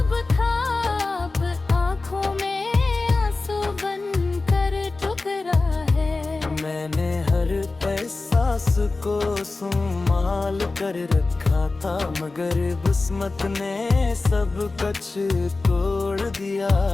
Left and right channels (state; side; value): quieter; right; 3.5 dB